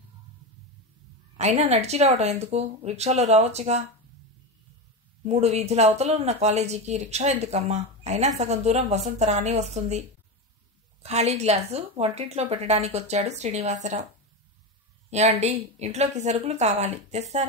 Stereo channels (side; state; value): both; normal; correlation 0.17